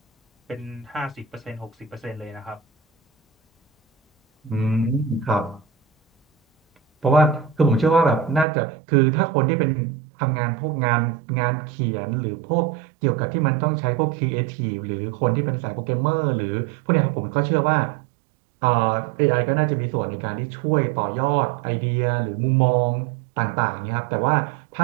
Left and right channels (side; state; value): left; drops out; at 8.5 s